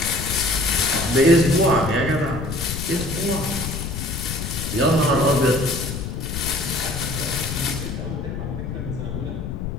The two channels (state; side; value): noise; left; rumble, 5 dB below the sound